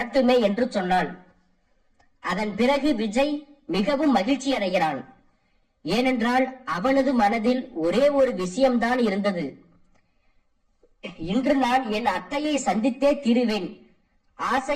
என்று சொன்னாள். அதன் பிறகு விஜய் மிகவும் மகிழ்ச்சி அடைகிறான். ஏனென்றால் அவனது மனதில் ஒரே ஒரு விஷயம்தான் இருந்தது. இன்று நான் என் அத்தையை சந்தித்தே தீருவேன்,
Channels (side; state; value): both; identical; correlation 1.00